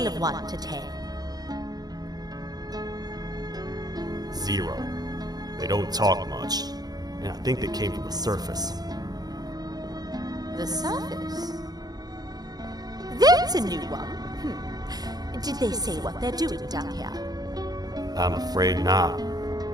of 1 to 10? 0. They don't talk much, and I think they came from the surface. The surface? That's a new one. Did they say what they're doing down here? I'm afraid not.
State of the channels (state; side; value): late; left; 0.19 ms